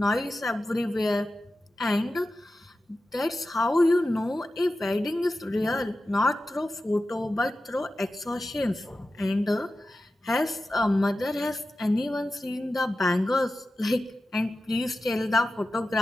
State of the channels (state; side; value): normal; both; correlation 0.93